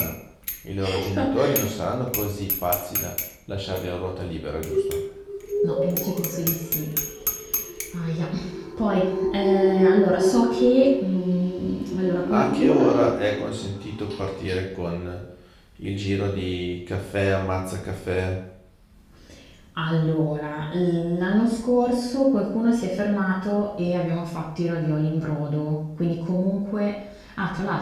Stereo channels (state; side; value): identical; both; correlation 1.00